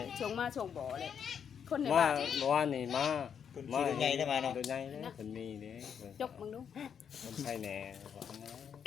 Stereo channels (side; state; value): right; quieter; 7.7 dB